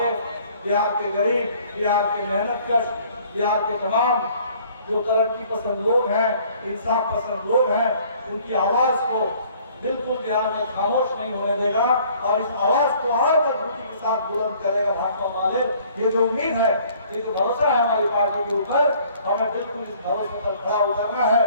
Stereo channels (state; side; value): inverted; both; correlation -0.57